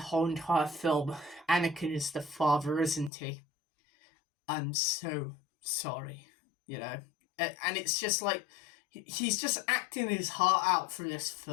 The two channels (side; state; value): right; drops out; at 3.1 s